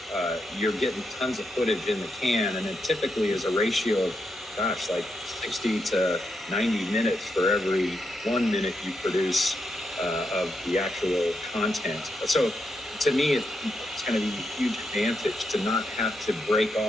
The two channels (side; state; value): both; normal; correlation 0.83